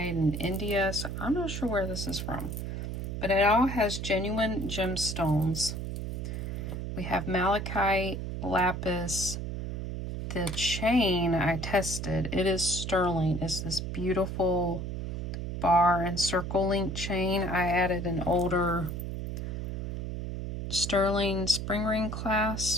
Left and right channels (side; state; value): right; noise; hum, 4 dB below the sound